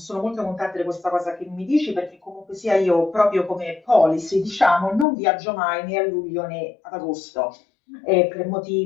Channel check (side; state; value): right; drops out; at 5.1 s